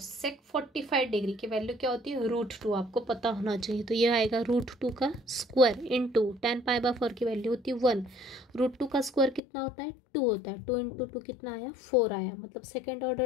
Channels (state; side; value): drops out; right; at 9.4 s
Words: 45 degree की वैल्यू क्या होती है, √2, आपको पता होना चाहिए। तो ये आएगा √2 का स्क्वायर इंटू 10 पाई बाय 4 की वैल्यू होती है 1, √2 का स्क्वायर कितना होता है, 2 होता है, 2 इंटू 2 कितना आया, 4 आया, मतलब सेकेंड